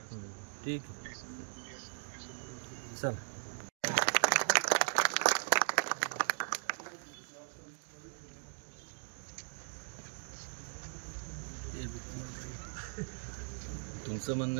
ठीक आहे, चल. तुमचं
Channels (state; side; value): silent; left; digital silence